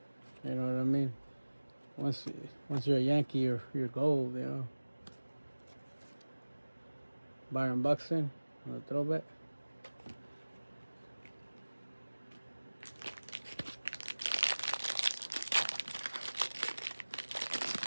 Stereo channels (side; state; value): both; inverted; correlation -1.00